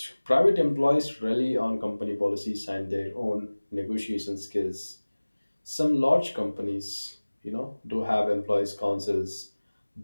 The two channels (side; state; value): both; inverted; correlation -1.00